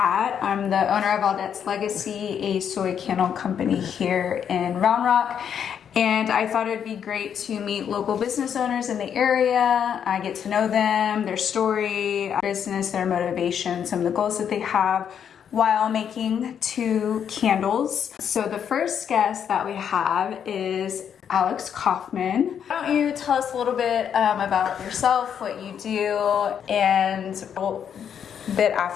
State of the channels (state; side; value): quieter; right; 8.3 dB